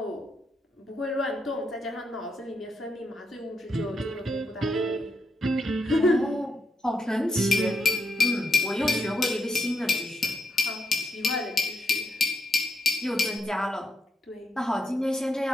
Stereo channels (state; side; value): normal; both; correlation 0.81